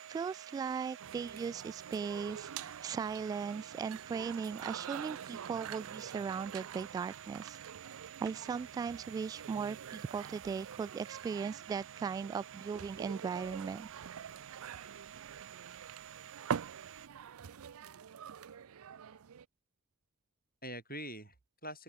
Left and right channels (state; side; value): quieter; left; 6.1 dB